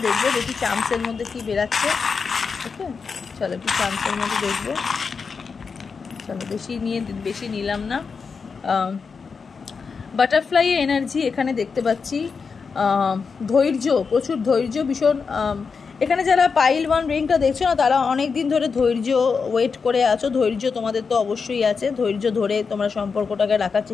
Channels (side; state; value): right; quieter; 5.3 dB